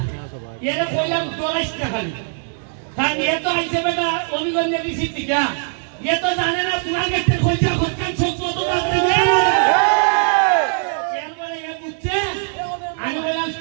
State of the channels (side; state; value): left; silent; 63 dB below the other